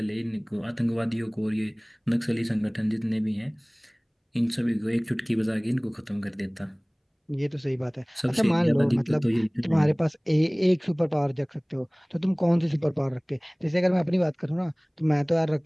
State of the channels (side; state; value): both; identical; correlation 1.00